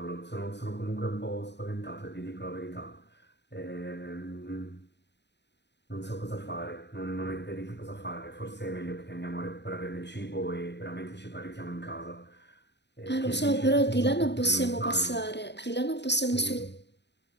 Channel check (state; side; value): late; right; 0.50 ms